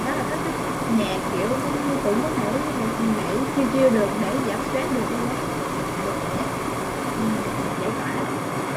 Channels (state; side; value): identical; both; correlation 1.00